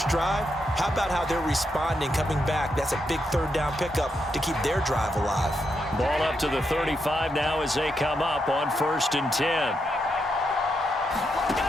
drive. How about how they're responding, coming back? That's a big 3rd down pickup to keep their drive alive. Ball up to the 35 now as they come up on 1st and 10.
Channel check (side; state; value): both; normal; correlation 0.82